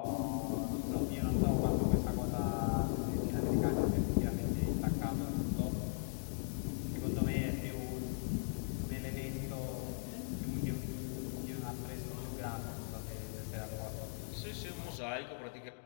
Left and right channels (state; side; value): silent; right; digital silence